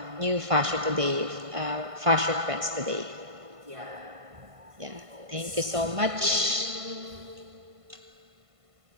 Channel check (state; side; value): late; left; 1.5 ms